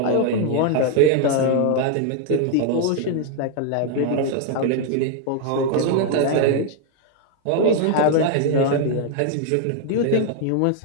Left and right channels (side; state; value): both; different; correlation 0.01